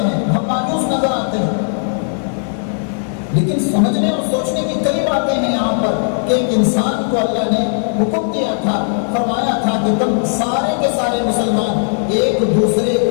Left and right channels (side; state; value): right; silent; digital silence